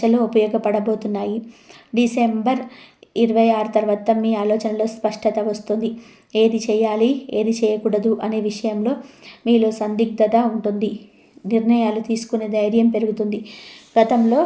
ఉపయోగపడబోతున్నాయి. డిసెంబర్ 26 తర్వాత మీ ఆలోచనలో స్పష్టత వస్తుంది. ఏది చేయాలి, ఏది చేయకూడదు అనే విషయంలో మీలో సందిగ్ధత ఉంటుంది. నిర్ణయాలు తీసుకునే ధైర్యం పెరుగుతుంది. గతంలో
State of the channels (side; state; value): both; identical; correlation 1.00